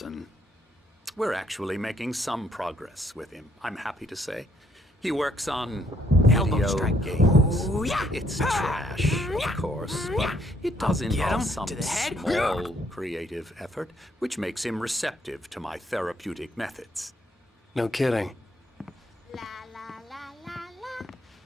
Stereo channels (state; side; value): normal; both; correlation 0.69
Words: We're actually making some progress with him, I'm happy to say. He works on Elbow video strike. games. Ooh, yeah. It's trash, of course, but it does Get involve him some to the head. small creative effort, which makes him receptive to my therapeutic methods. No kidding. La la la la la